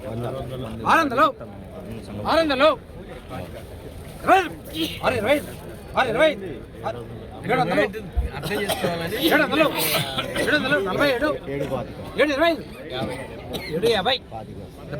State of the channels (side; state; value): both; identical; correlation 1.00